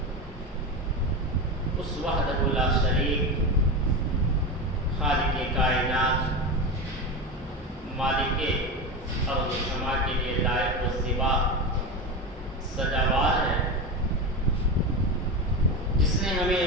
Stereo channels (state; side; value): normal; both; correlation 0.20